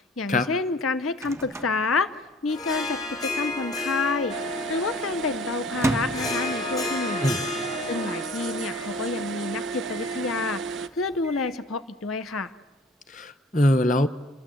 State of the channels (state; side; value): normal; both; correlation 0.50